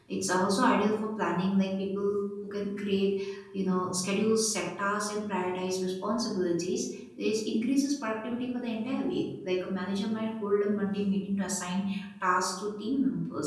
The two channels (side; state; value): both; identical; correlation 1.00